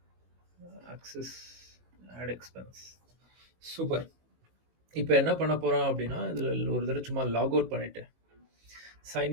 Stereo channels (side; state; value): left; late; 19 ms